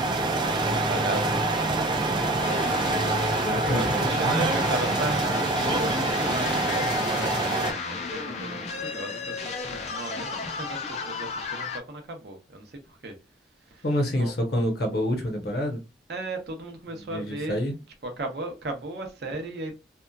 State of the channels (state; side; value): normal; both; correlation 0.40